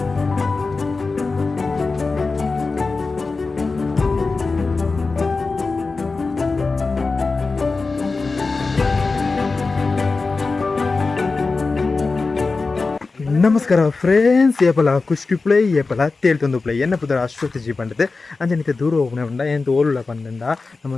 ನಮಸ್ಕಾರ ಫ್ರೆಂಡ್ಸ್. ಏಪಲ ಕುಷ್ಟಿ ಪ್ಲೇ ಏಪಲ ತೇಳ್ತೊಂದು ಪ್ಲೇ ಎನ್ನ ಪುದರ ಅಶ್ವತ್ಥ ಜಿ ಪಂಡದೆ ಅಂಜನಿತೆ ದೂರ ಹೋಗ್ನೆ ಉಂಡ ಎಂತ ಓಲುಳ ಪಂದಂಡ ನಮ್ಮ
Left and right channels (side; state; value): right; quieter; 4.0 dB